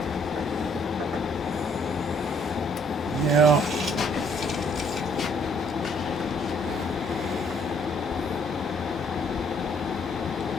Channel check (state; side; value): normal; both; correlation 0.65